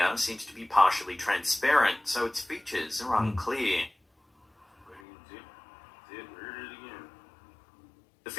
seems to be partially transparent, so its features are unclear. The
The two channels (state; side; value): drops out; right; at 5.0 s